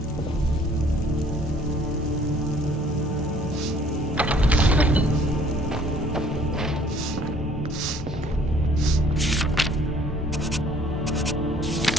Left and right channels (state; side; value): normal; both; correlation 0.57